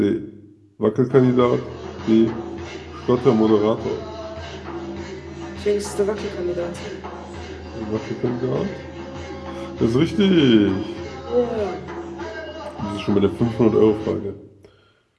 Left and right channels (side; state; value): both; identical; correlation 1.00